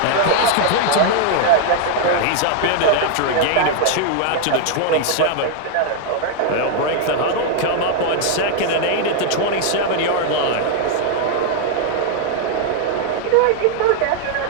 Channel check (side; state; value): both; different; correlation 0.00